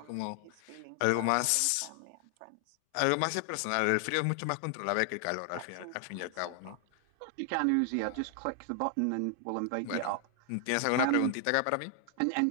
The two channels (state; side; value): different; both; correlation 0.00